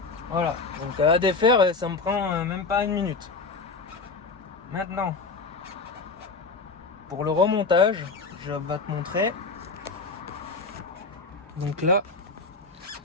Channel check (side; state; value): right; quieter; 4.1 dB